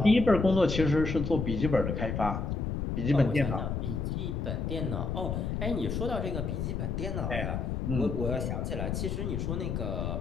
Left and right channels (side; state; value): left; noise; rumble, 2 dB below the sound